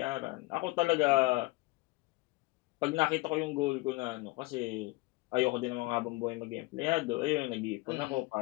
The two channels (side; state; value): right; quieter; 22.1 dB